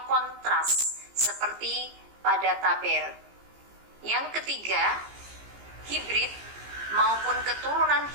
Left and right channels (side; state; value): left; late; 15 ms